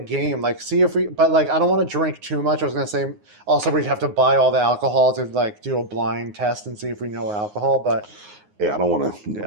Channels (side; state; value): left; late; 9.6 ms